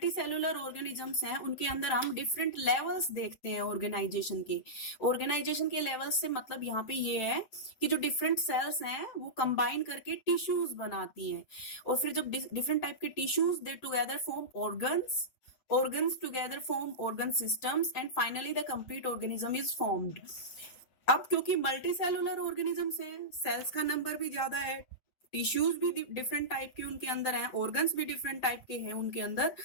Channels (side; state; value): right; late; 8.1 ms